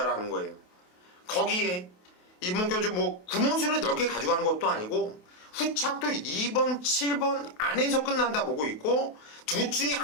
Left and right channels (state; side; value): late; right; 28 ms